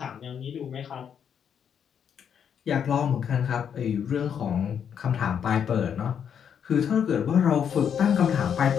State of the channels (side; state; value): right; quieter; 8.0 dB